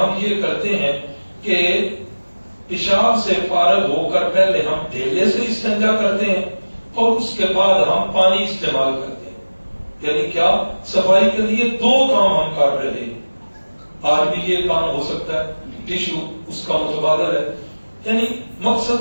یہ کرتے ہیں کہ پیشاب سے فارغ ہو کر پہلے ہم ڈھیلے سے استنجا کرتے ہیں، اور اس کے بعد ہم پانی استعمال کرتے ہیں۔ یعنی کیا؟ صفائی کے لیے 2 کام ہم کر رہے ہیں۔ آج بھی یہ کام ہو سکتا ہے، ٹیشو اس کا متبادل ہے، یعنی مقصد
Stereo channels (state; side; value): inverted; both; correlation -1.00